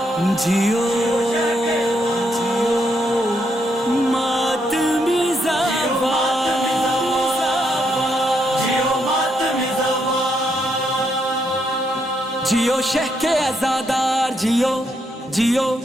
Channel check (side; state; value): both; normal; correlation 0.77